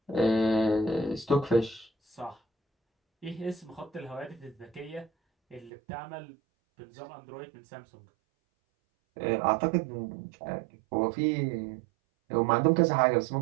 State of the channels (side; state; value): left; drops out; at 5.7 s